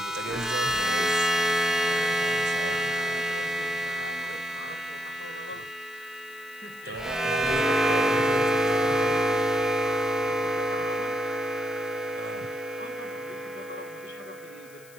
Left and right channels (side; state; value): left; noise; hiss, 24 dB below the sound